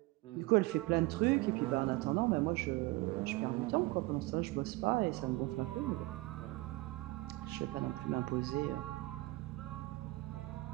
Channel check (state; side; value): quieter; left; 21.7 dB